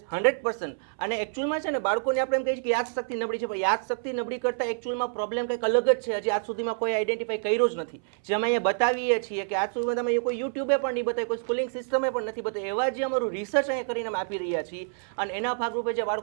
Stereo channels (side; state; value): left; silent; 60 dB below the other